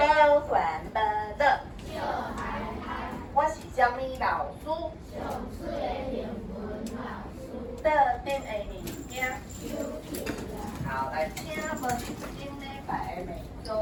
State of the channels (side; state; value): both; identical; correlation 1.00